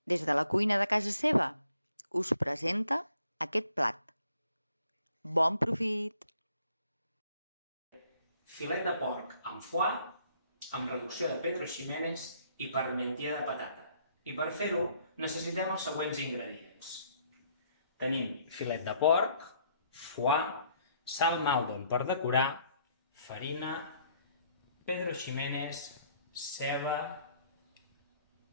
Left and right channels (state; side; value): inverted; both; correlation -0.66